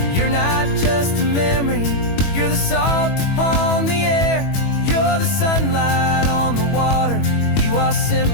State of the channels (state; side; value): late; right; 21 ms